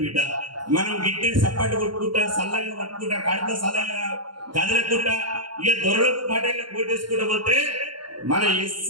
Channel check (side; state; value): left; late; 0.72 ms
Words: బిడ్డ. మనం గిట్టి సప్పటి కొట్టుకుంటా, సల్లంగా పట్టుకుంటా, కడుపులో సల్లంగా కదలకుంటా, ఇక దొరలకు పటేళ్ళకు కోటేసుకుంటా పోతే మన